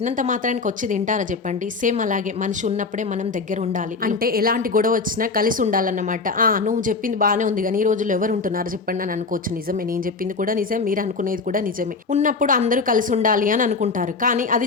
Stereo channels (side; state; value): right; quieter; 4.3 dB